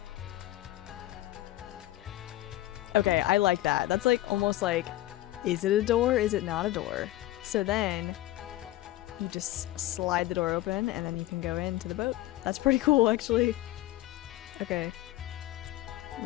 Okay, I like that. That's like almost like, is it a door? Is it not a door? So then you just slide the door open and then you can go into the boat. That's pretty cool, actually. Okay.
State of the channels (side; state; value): right; quieter; 15.9 dB